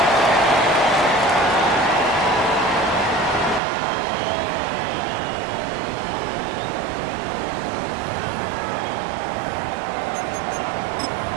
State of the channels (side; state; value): left; drops out; at 3.6 s